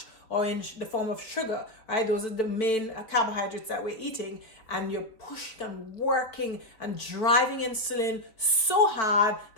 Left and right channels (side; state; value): right; late; 4.5 ms